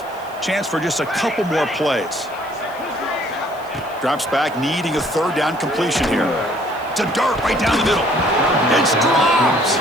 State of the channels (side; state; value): left; noise; hiss, 25 dB below the sound